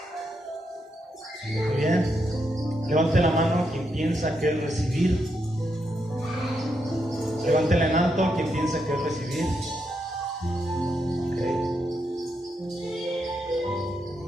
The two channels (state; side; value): normal; both; correlation 0.81